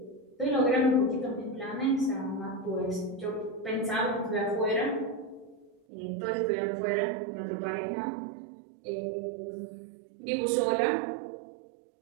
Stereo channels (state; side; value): drops out; left; at 5.8 s